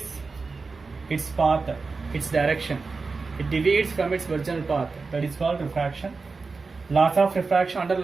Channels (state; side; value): quieter; left; 4.2 dB